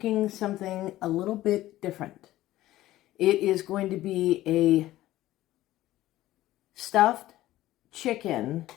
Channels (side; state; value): right; quieter; 15.3 dB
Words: something a little bit different. It is going to be a stuffed chicken